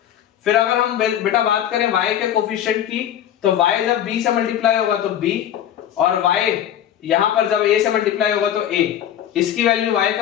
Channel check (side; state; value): right; quieter; 10.6 dB